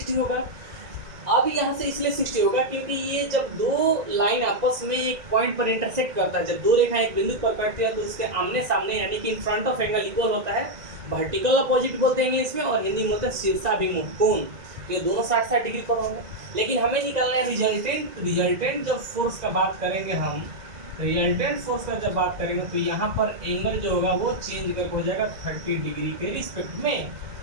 होगा। अब यहाँ से इसलिए 60 होगा क्योंकि ये जब दो लाइन आपस में एक पॉइंट पर इंटरसेक्ट करता है, जब दो रेखाएं एक बिंदु पर कटती है तो उसके आमने सामने यानी कि in front of angle equal होता है। वर्टिकल अपोजिट बोलते हैं इंग्लिश में और हिंदी में बोलते हैं शीर्षाभिमुख कोण। ये दोनों 60-60 डिग्री पर होंगे। लेकिन हमें निकालना है रिजल्टेंट जब फोर्स का बात करेंगे हम, रिजल्टेंट फोर्स का जब बात करेंगे तो यहाँ पर एंगल जो होगा वो चेंज करके हो जाएगा 30 डिग्री के रिस्पेक्ट में।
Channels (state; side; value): late; left; 1.9 ms